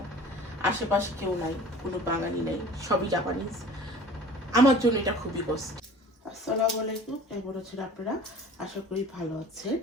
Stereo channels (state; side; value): normal; both; correlation 0.44